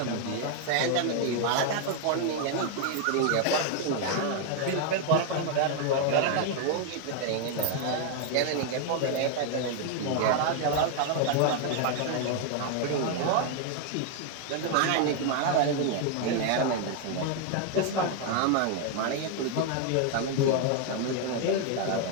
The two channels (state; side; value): different; both; correlation 0.00